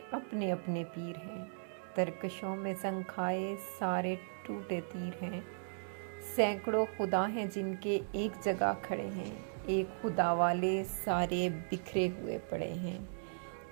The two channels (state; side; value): silent; left; digital silence